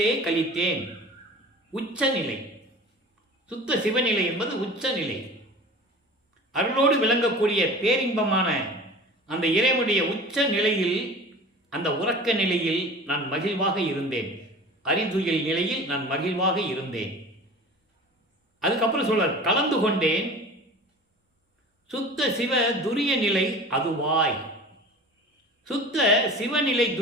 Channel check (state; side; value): normal; both; correlation 0.39